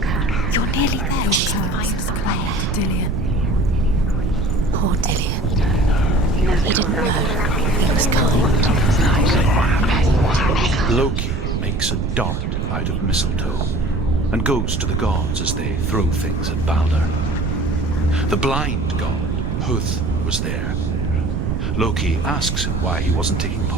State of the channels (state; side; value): noise; right; rumble, 1 dB below the sound